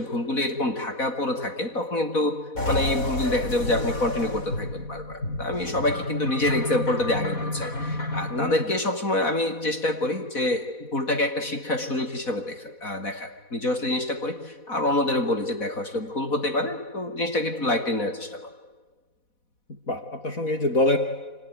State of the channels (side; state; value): right; late; 4.1 ms